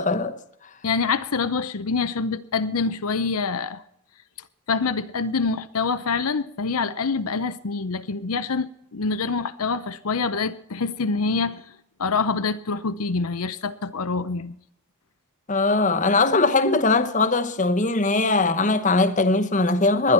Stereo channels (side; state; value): right; quieter; 3.3 dB